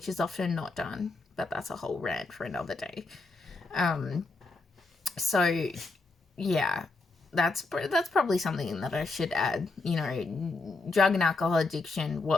is often not done, but that's a whole rant for another day. So yeah, that's probably something that I should add. You know, drug and alcohol addiction,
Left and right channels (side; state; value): right; quieter; 3.6 dB